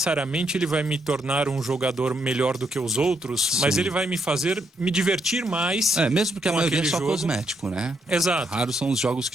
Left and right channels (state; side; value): normal; both; correlation 0.77